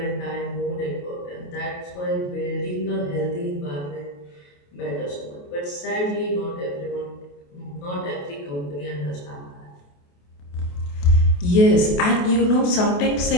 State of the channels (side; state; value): right; late; 28 ms